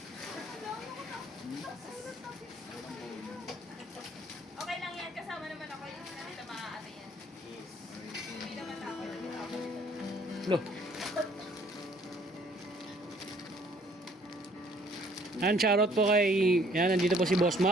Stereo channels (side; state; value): both; normal; correlation 0.60